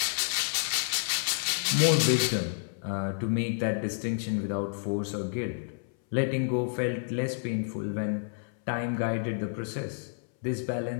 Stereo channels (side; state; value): right; silent; 58 dB below the other